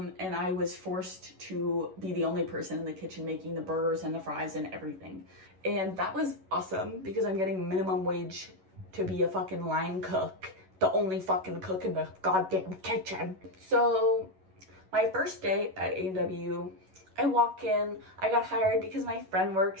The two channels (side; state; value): left; late; 11 ms